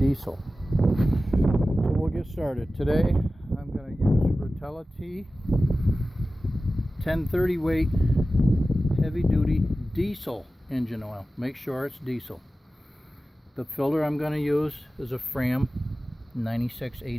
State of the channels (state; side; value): normal; both; correlation 0.95